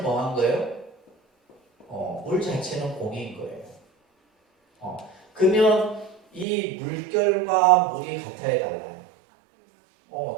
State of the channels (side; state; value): left; drops out; at 6.5 s